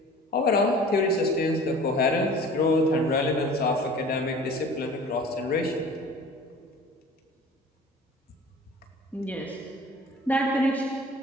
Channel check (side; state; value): both; normal; correlation 0.44